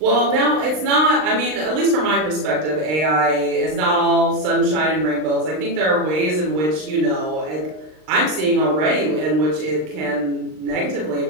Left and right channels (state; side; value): late; left; 39 ms